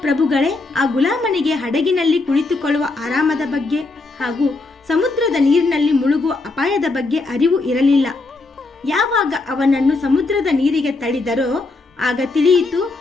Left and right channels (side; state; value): right; quieter; 3.4 dB